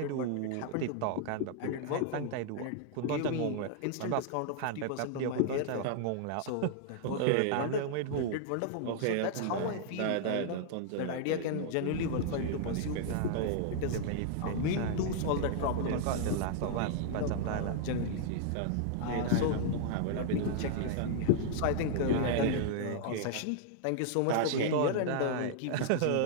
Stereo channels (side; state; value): both; different; correlation -0.01